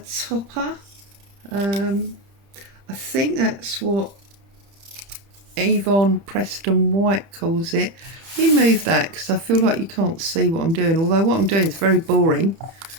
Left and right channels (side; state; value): left; late; 30 ms